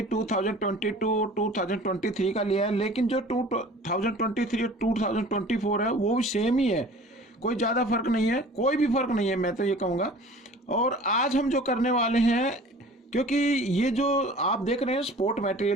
2022 2023 का लिया है, लेकिन जो 2023 और 2024 है वो भी सेम ही है, कोई ज़्यादा फर्क नहीं है, कोई भी फर्क नहीं है, मैं तो ये कहूँगा। और आज हम जो करने वाले हैं, क्योंकि ये जो आप देख रहे हैं स्पोर्ट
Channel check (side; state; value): both; normal; correlation 0.45